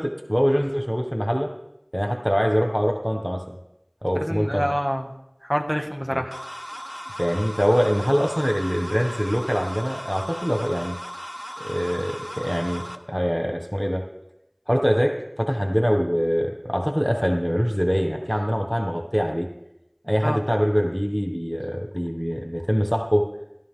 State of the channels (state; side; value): identical; both; correlation 1.00